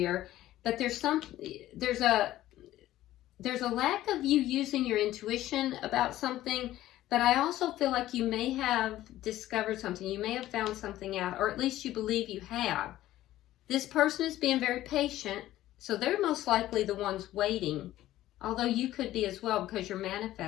but there's a lack of you using your intuition about something, but I also feel like you may have discovered something. You may have found something out, or at least you believe you have. This person is being very patient, so they're most likely the ones waiting, although you could be as well because you're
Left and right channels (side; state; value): right; quieter; 14.5 dB